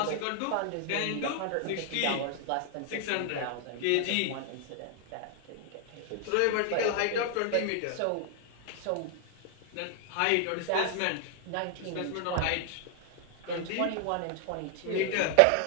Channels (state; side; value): different; both; correlation 0.00